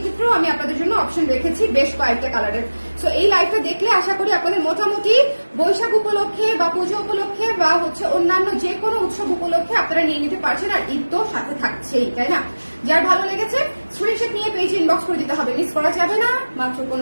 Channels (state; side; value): inverted; both; correlation -1.00